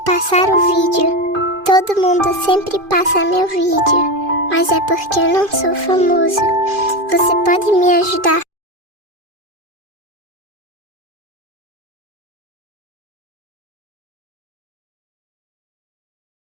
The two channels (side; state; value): left; late; 2.5 ms